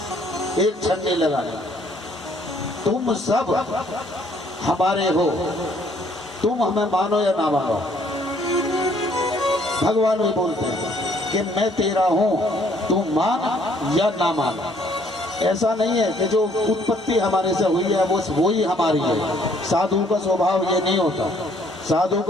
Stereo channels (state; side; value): normal; both; correlation 0.63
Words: एक क्षण नहीं लगाना। तुम सब हमारे हो, तुम हमें मानो या ना मानो। भगवान भी बोलते हैं कि मैं तेरा हूं, तुम मान या ना मान। ऐसा नहीं है कि जो उत्पत्ति हमारे से हुई है वो ही हमारी है। साधु का स्वभाव ये नहीं होता। साधु